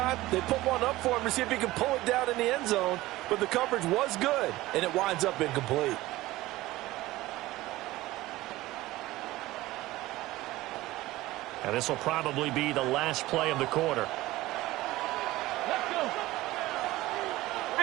they put one up for him to see if he can pull it down in the end zone. But the coverage was good, and it winds up incomplete. And this will probably be the last play of the quarter. Let's go.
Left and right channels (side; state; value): left; quieter; 17.8 dB